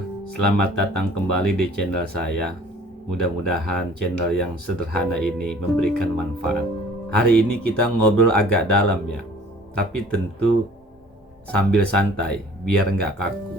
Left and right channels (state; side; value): normal; both; correlation 0.51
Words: selamat datang kembali di channel saya. Mudah-mudahan channel yang sederhana ini memberikan manfaat. Hari ini kita ngobrol agak dalam ya, tapi tentu sambil santai biar nggak